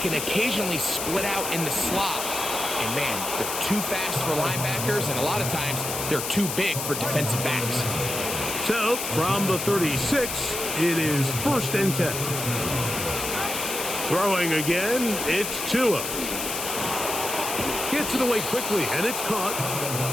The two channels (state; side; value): noise; left; hiss, 4 dB below the sound